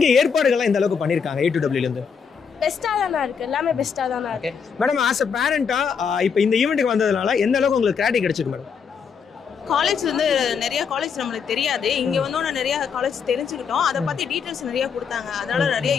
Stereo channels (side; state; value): right; quieter; 6.4 dB